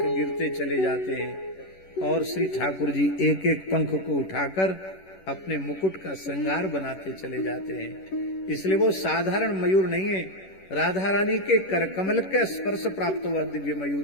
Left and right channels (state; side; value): late; right; 11 ms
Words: गिरते चले जाते हैं और श्री ठाकुर जी एक एक पंख को उठाकर अपने मुकुट का श्रृंगार बनाते चले जाते हैं। इसलिए वो साधारण मयूर नहीं है, राधा रानी के करकमल का स्पर्श प्राप्त हुआ दिव्य